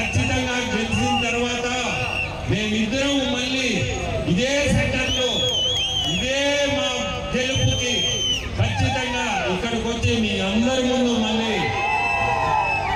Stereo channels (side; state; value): both; identical; correlation 1.00